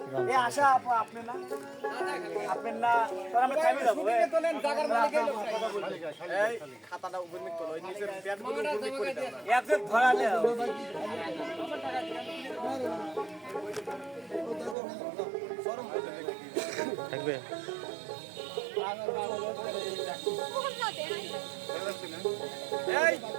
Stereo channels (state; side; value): drops out; left; at 14.8 s